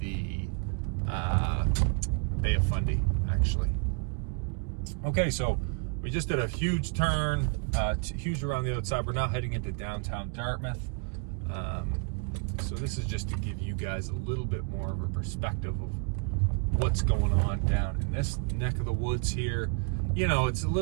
Bay of Fundy, actually. Okay, so we just did a huge turn, huge around the outside. We're now heading into downtown Dartmouth. So this is just to give you guys a little bit more of a perspective of what's going on down in this neck of the woods here. You know, it's a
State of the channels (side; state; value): left; quieter; 37.6 dB